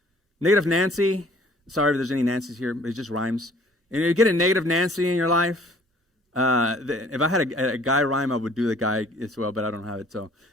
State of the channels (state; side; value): normal; both; correlation 0.55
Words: negative Nancy. Sorry if there's any Nancy's here, but it just rhymes. And you get a negative Nancy in your life. If I had a guy rhyme, I would do the guy as well, but I don't have it. So